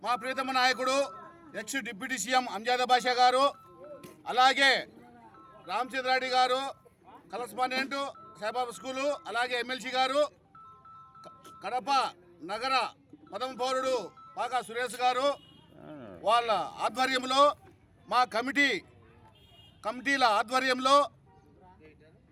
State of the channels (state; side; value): identical; both; correlation 1.00